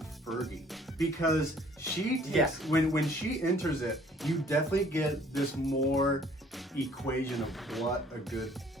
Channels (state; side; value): normal; both; correlation 0.57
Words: Fergie, because she takes, when she enters it, you definitely get this more equation of what a good